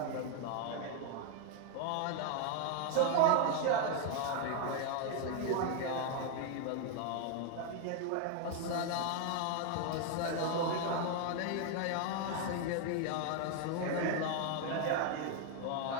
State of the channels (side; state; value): both; different; correlation 0.01